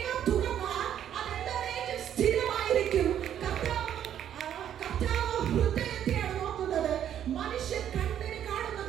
തുറന്നാൽ അത് എന്നേക്കും സ്ഥിരമായിരിക്കും. കർത്താവ് ഹൃദയത്തെയാണ് നോക്കുന്നത്. മനുഷ്യൻ കണ്ണിന്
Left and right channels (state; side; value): quieter; left; 10.1 dB